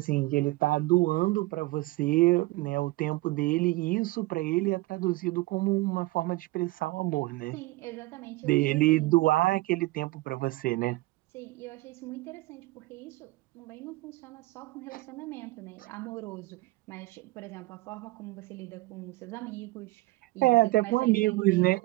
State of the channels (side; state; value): left; quieter; 20.5 dB